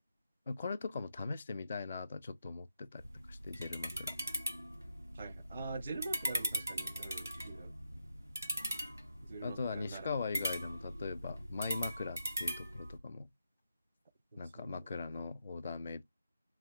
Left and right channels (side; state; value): both; inverted; correlation -0.83